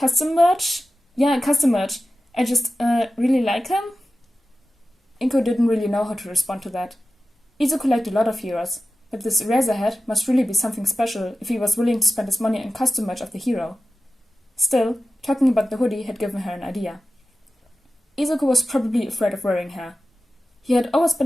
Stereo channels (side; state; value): both; normal; correlation 0.94